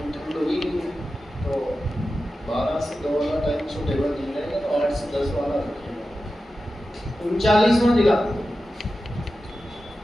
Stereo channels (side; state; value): both; normal; correlation 0.92